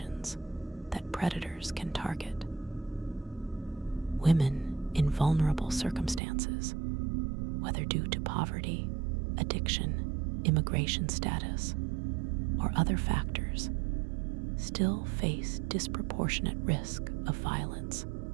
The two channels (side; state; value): left; drops out; at 6.2 s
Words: that predators can target. Women in vulnerable circumstances, whether due to poverty, addiction, immigration status, or other factors, still face disproportionate risk of violence.